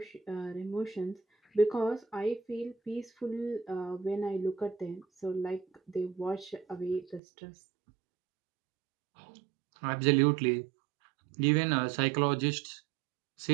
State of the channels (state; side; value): drops out; left; at 7.2 s